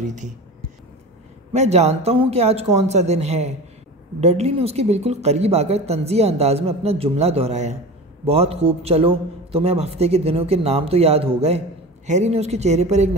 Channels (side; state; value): both; normal; correlation 0.32